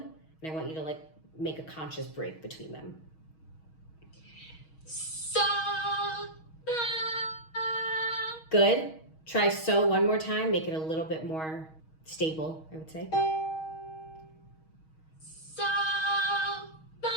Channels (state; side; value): late; right; 6.3 ms